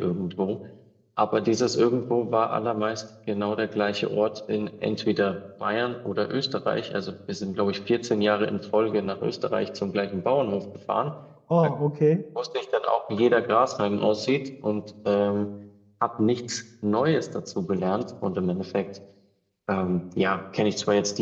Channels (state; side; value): identical; both; correlation 1.00